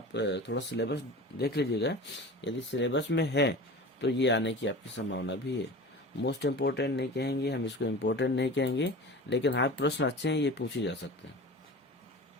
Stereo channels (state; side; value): normal; both; correlation 0.35